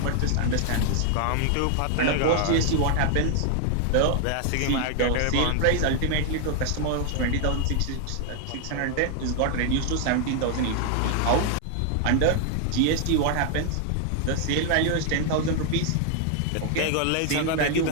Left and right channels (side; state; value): both; different; correlation 0.00